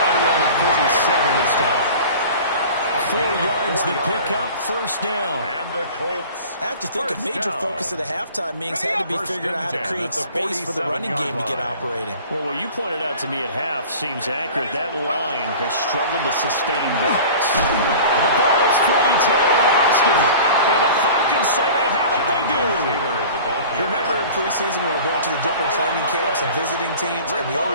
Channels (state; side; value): inverted; both; correlation -0.41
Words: right around the 47 this time. 4 yards the pickup, first down. And the Colts. I have to think a major focus of the halftime meetings had to be figuring out how to create space for the running game to get operating. Well, what you pointed out to me at half seems accurate. That line has struggled to sustain blocks. And the ball is free. Taylor lost it. And the Falcons say they have it. They do. You remember in preseason we were going to the different training camps and visiting teams, and we